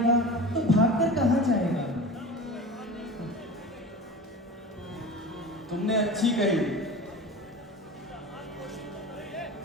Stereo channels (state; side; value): normal; both; correlation 0.33